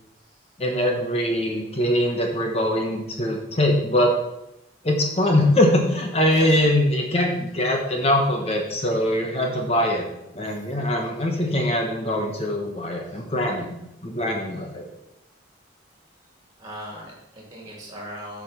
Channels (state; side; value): normal; both; correlation 0.44